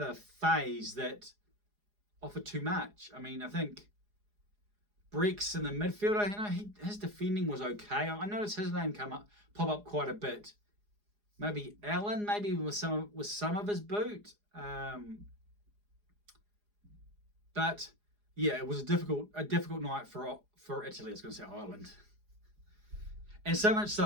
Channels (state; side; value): late; left; 4.8 ms